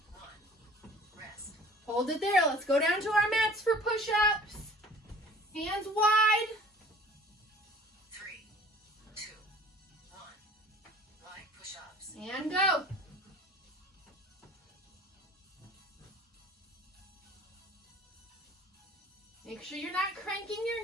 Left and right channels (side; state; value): both; normal; correlation 0.48